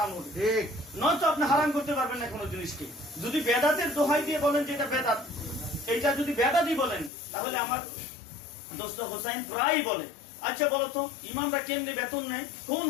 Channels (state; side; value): drops out; right; at 7.1 s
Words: হবে, নয়তো আপনি হারাম করতে পারবেন না কোনো জিনিসকে। যদি বেদাতের দোহাই দিয়ে বলেন যে এটা বেদাত, এইটা যদি বেদাতই বলেন, তাহলে আমার দোস্ত হোসাইন প্রায়ই বলে, আচ্ছা বলতো ইমামরা কেমনি বেতন নেয়, কোন